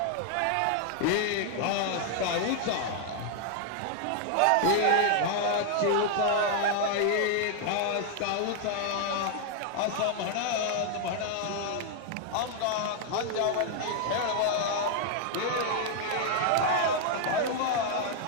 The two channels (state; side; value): different; both; correlation 0.00